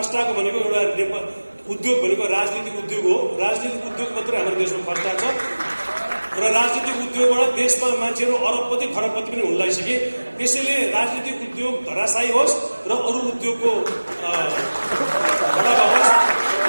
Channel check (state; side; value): inverted; both; correlation -1.00